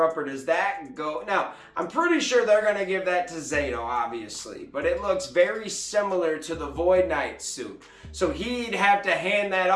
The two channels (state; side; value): identical; both; correlation 1.00